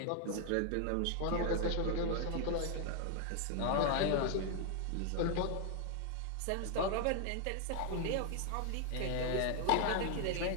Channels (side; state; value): both; different; correlation 0.00